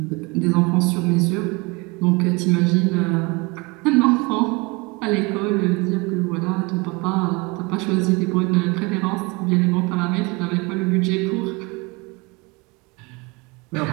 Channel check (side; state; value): left; quieter; 26.2 dB